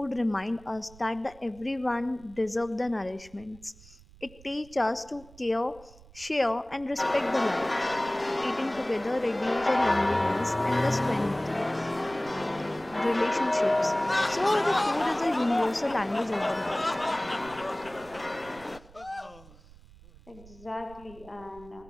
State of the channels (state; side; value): noise; right; rumble, 22 dB below the sound